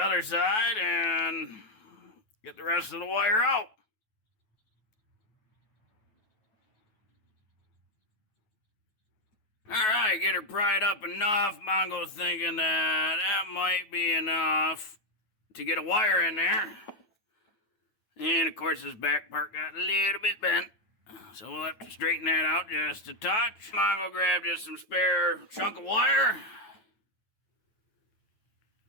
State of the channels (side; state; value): right; late; 9.4 ms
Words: side and get the rest of the wire out. Alright, get her pried up enough. Mongo's thinking that might be enough to get a wire in there. And of course this back part got a little bit bent, so we'll have to straighten that out just a touch. Mongo grabbed just some spare chunk of wire.